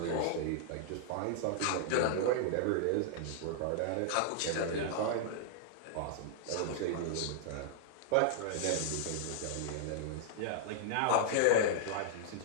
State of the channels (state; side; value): different; both; correlation -0.01